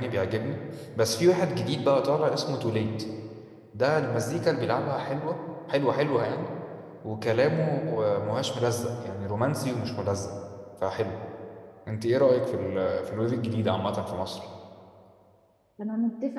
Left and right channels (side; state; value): both; identical; correlation 1.00